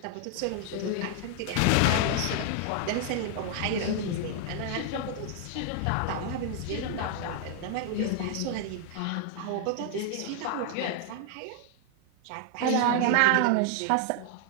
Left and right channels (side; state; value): both; different; correlation 0.00